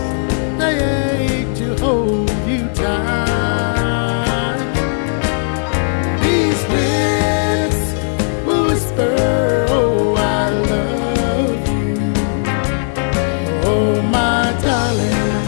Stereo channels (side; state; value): right; silent; digital silence